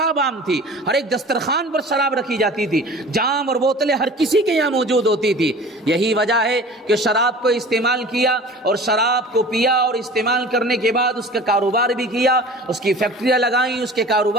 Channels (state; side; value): normal; both; correlation 0.41